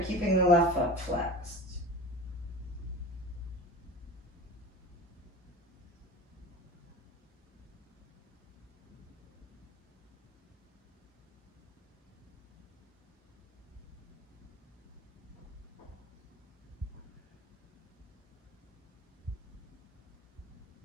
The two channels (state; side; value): normal; both; correlation 0.34